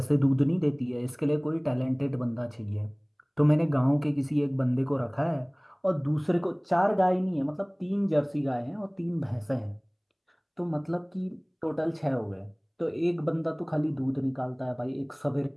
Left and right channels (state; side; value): identical; both; correlation 1.00